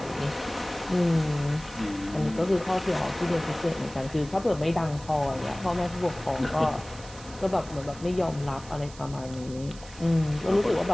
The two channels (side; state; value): right; noise; hiss, 18 dB below the sound